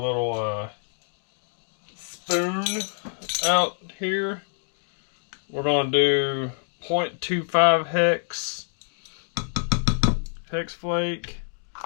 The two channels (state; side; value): silent; right; 61 dB below the other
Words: spoon out here. We're going to do 0.25 hex flake,